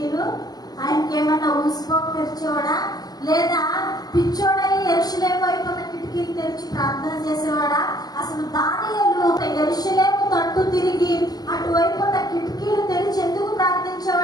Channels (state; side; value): late; right; 0.19 ms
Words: ఆయనకి ఏమన్నా ఊసిపోక తెరిచేవాడా? లేదా పిచ్చోడై యెరూషలేము వైపు ఉన్న కిటికీలు తెరిచి ప్రార్థన చేసేవాడా? అసలు దానియేలు యెరూషలేము తట్టు తిరిగి అటువైపు ఉన్న కిటికీలు తెరిచి ఎందుకు